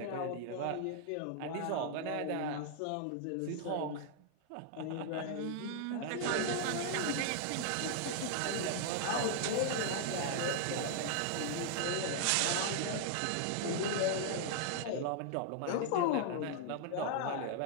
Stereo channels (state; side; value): different; both; correlation 0.00